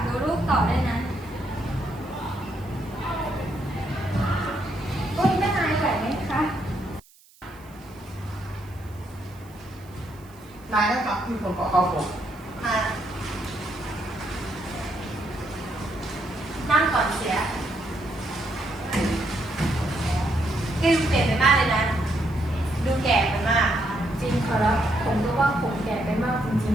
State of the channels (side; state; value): right; noise; hiss, 27 dB below the sound